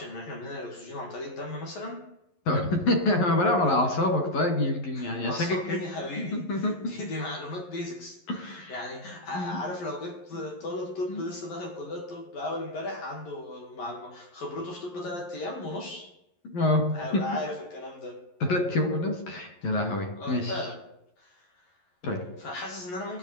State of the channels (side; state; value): right; late; 11 ms